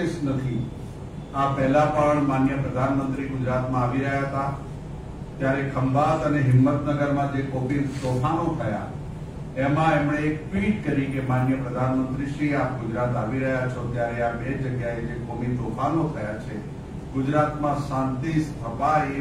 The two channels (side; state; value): both; identical; correlation 1.00